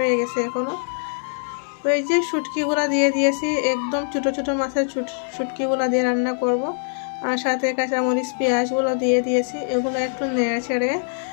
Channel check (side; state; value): right; silent; 61 dB below the other